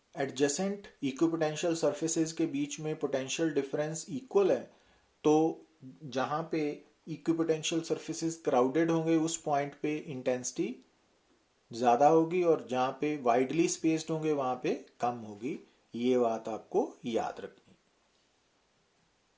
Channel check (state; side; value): identical; both; correlation 1.00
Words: एडजेसेंट इक्विपोटेंशियल सरफेसेस के बीच में पोटेंशियल डिफरेंस इक्वल है तो जहां पे इक्विपोटेंशियल सरफेसेस क्राउडेड होंगे उस पॉइंट पे इंटेंसिटी ज्यादा होगी और जहां पे वाइडली स्पेस्ड होंगे वहां पे कम होगी। ये बात आपको याद रखनी।